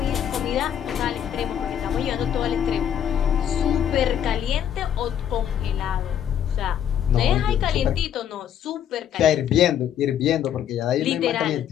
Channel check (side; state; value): right; quieter; 9.6 dB